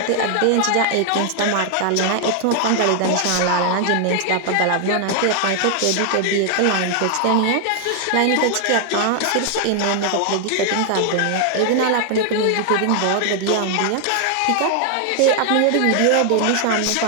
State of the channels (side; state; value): both; different; correlation 0.00